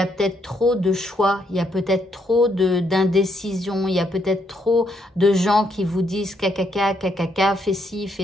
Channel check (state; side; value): normal; both; correlation 0.74